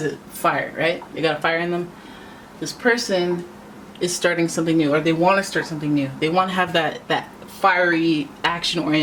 a fire, right? They got a fire in them. This person is starting something new, or they want to start something new. They want to have that fiery,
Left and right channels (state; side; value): identical; both; correlation 1.00